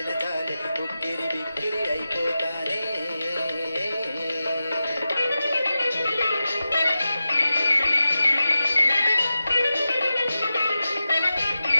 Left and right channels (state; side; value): inverted; both; correlation -0.92